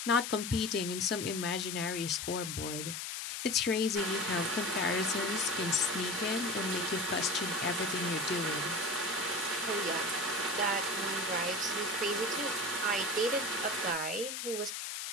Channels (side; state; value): left; noise; hiss, 5 dB below the sound